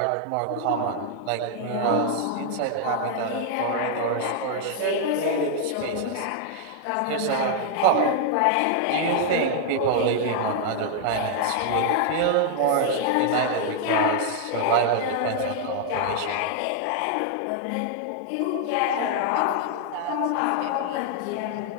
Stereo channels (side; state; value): both; different; correlation 0.00